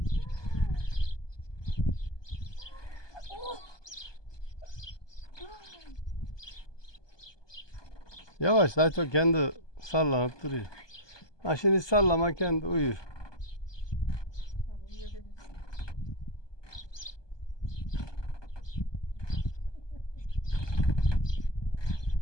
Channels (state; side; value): late; right; 1.2 ms